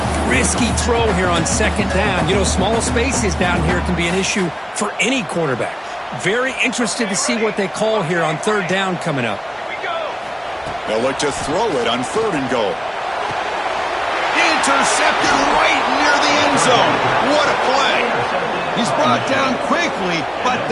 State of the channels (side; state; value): both; identical; correlation 1.00